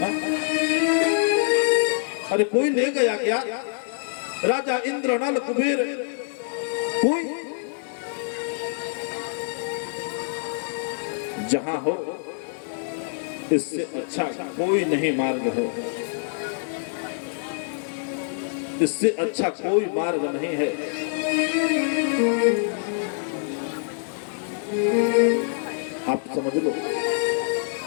अरे कोई ले गया क्या? राजा इंद्र, नल, कुबेर, कोई? जहां हो इससे अच्छा कोई नहीं मार्ग है, इससे अच्छा कोई मार्ग नहीं है। आप समझ लो,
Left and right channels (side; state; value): right; silent; digital silence